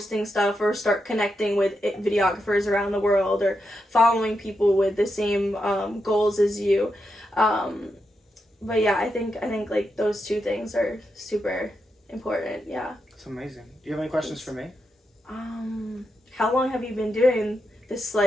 stuff or start connecting with videographers around the world, or following people with the same goals as you. But yeah, I think like those two things are super important. Yeah. It's amazing. Do you have any questions for me? How long have you been doing this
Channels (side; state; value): both; normal; correlation 0.85